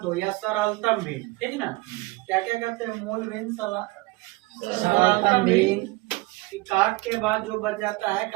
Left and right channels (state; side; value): quieter; left; 22.1 dB